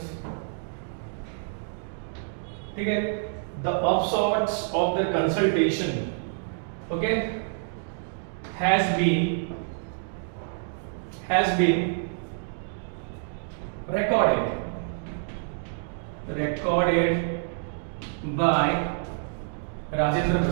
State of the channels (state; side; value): silent; left; digital silence